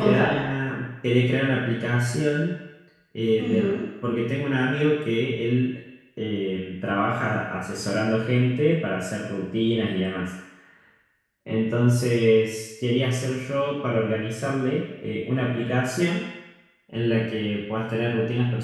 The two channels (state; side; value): identical; both; correlation 1.00